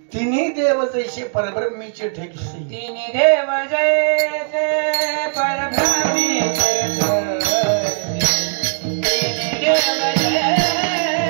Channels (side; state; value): left; silent; digital silence